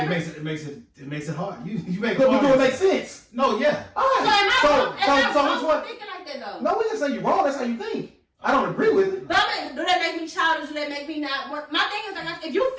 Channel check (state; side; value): identical; both; correlation 1.00